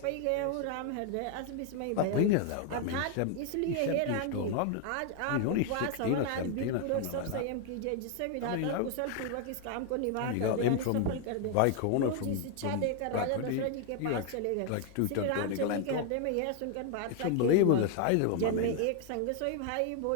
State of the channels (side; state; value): both; different; correlation 0.00